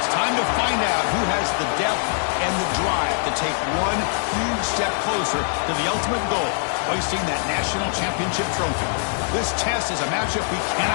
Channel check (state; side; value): silent; right; 62 dB below the other